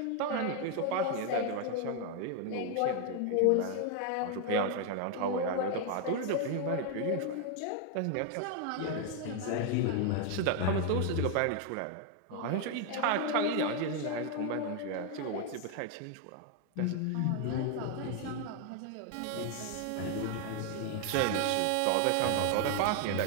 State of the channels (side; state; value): both; different; correlation 0.01